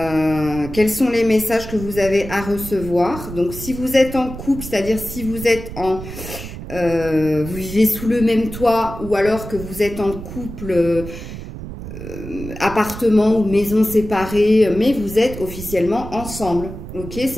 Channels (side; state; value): right; noise; rumble, 10 dB below the sound